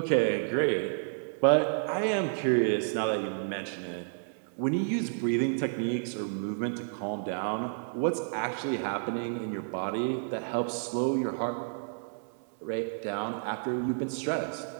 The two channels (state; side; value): silent; left; 57 dB below the other